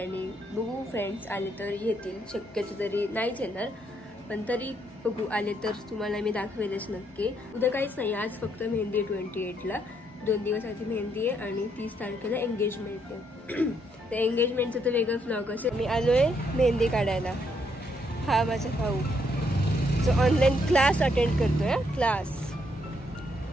बघू फ्रेंड्स आले तर येतील. शक्यतो तरी नाहीच येणार पण तरी बघू आले तर तुम्हाला मी दाखवेलच नक्की. उद्या काहीच नाही, आज फक्त मेहंदी आहे 28ला. 2 दिवसाची मेहंदी आहे आणि 30 तारखेला एंगेजमेंट आहे. तर एंगेजमेंटचं तर वेगळं व्लॉग असेल. मी आलोय मेहंदी काढायला. हा माझा भाऊ जो ऑनलाईन क्लास अटेंड करतोय. क्लास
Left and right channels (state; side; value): normal; both; correlation 0.74